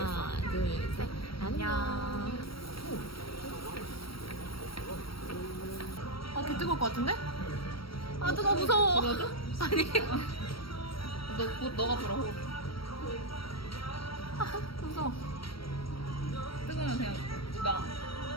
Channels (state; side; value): late; right; 0.75 ms